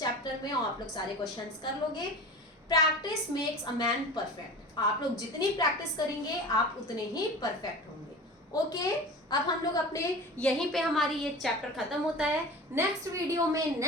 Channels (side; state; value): both; normal; correlation 0.35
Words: में और आप लोग सारे क्वेश्चंस कर लोगे। Practice makes a man perfect. आप लोग जितनी प्रैक्टिस करेंगे आप उतने ही परफेक्ट होंगे। ओके, अब हम लोग अपने यहीं पे हमारी ये चैप्टर खत्म होता है। नेक्स्ट वीडियो में